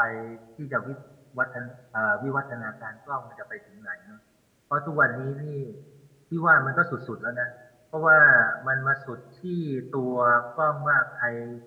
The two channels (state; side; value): identical; both; correlation 1.00